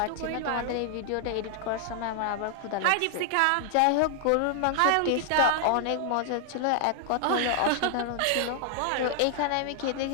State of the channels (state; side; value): different; both; correlation 0.00